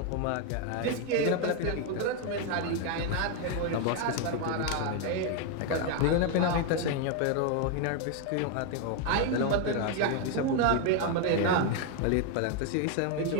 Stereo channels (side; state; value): both; different; correlation 0.01